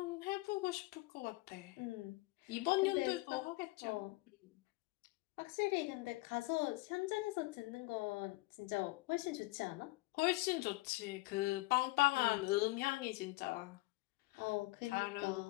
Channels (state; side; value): quieter; right; 22.3 dB